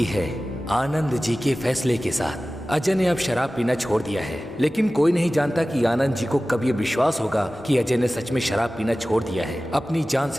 है आनंद जी के फैसले के साथ। अजय ने अब शराब पीना छोड़ दिया है, लेकिन कोई नहीं जानता कि आनंद जी को कब ये विश्वास होगा कि अजय ने सच में शराब पीना छोड़ दिया है। अपनी जान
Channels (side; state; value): right; noise; rumble, 28 dB below the sound